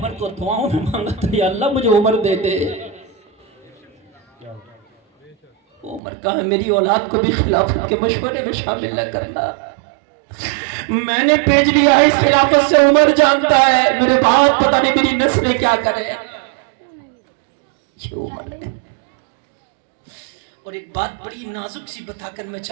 کو دعاؤں میں مانگا تھا یا اللہ مجھے عمر دے دے۔ عمر کہا ہے میری اولاد کو بھی خلافت کے مشورے میں شامل نہ کرنا، میں نے بھیج لیا ہے اس خلافت سے، عمر جانتا ہے میرے بعد پتہ نہیں میری نسلیں کیا کرے۔ یہ عمر ہے۔ اور ایک بات بڑی نازک سی بتا کر میں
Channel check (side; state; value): left; drops out; at 6.0 s